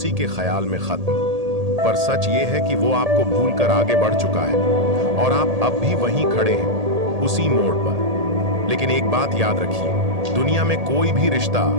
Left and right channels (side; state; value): left; late; 1.8 ms